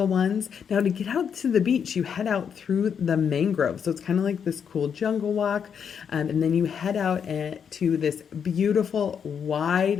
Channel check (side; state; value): right; quieter; 7.4 dB